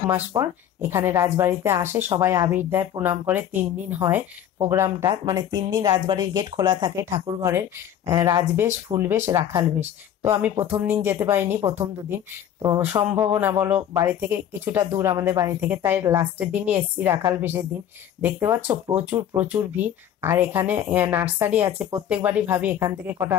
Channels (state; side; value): quieter; right; 10.2 dB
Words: মাস পর এখানে রাজবাড়িতে আসে, সবাই আবির দেয়, প্রণাম করে। 3 দিন হয় প্রোগ্রামটা, মানে 3 দিন রাজবাড়ির গেট খোলা থাকে ঠাকুর ঘরের, রাজবেশ, ফুলবেশ, রাখাল বেশ। তো আমি প্রথম দিন যেতে পারিনি, প্রথম 2 দিন তো সম্ভাবনা বলো, বাড়ি থেকে কিছুটা দূর আমাদের বাড়ি থেকে, তাই লাস্টের দিনই এসছি, রাখাল বেশের দিন। দেখতে পাচ্ছ প্রচুর প্রচুর ভিড়। আর এখানে নার্সারি আছে, প্রত্যেকবারই ভাবি এখান থেকে কটা